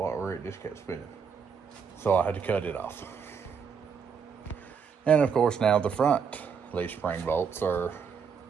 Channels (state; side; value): quieter; left; 6.4 dB